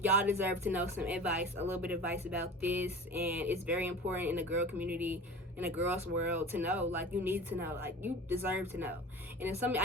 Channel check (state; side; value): normal; both; correlation 0.37